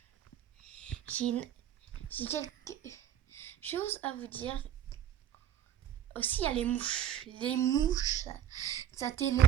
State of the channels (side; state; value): left; quieter; 10.5 dB